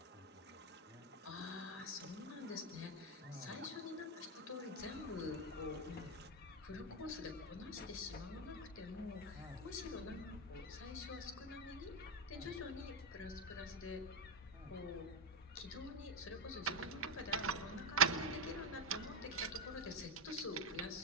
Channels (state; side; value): normal; both; correlation 0.08